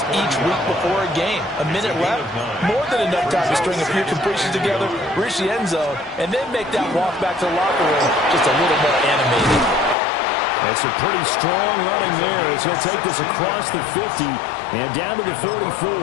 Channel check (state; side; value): drops out; right; at 10.0 s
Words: each week before a game. A minute left, more than enough time to string a few completions together, reach the end zone, and then make that walk back to the locker room just a little more animated. It's a pretty strong running there as he'll take this across the 50 and down to the